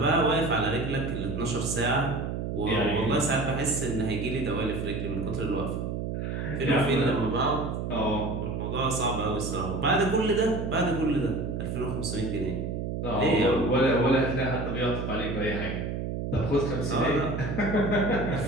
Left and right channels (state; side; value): noise; right; hum, 3 dB below the sound